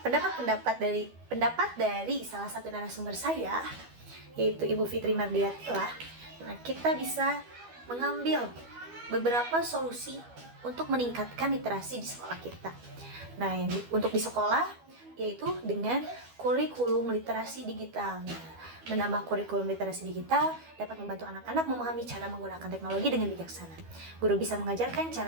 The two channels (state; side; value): late; left; 12 ms